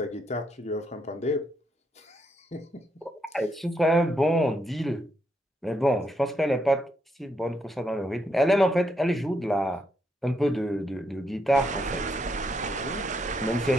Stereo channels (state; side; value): normal; both; correlation 0.78